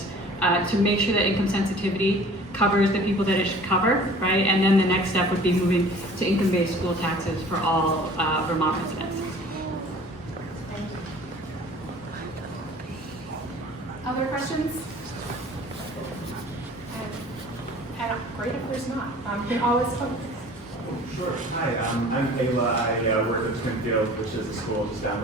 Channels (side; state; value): both; normal; correlation 0.47